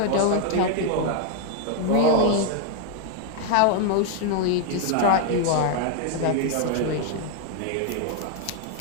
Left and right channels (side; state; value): both; different; correlation 0.00